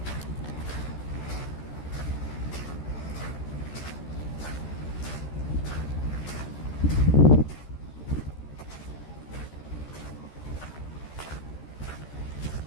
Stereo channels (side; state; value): right; late; 14 ms